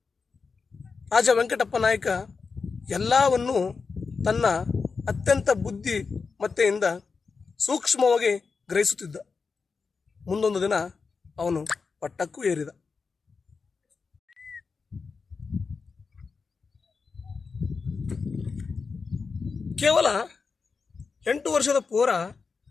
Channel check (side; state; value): right; quieter; 4.9 dB